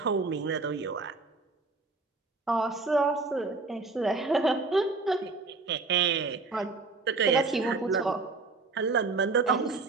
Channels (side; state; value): left; quieter; 3.9 dB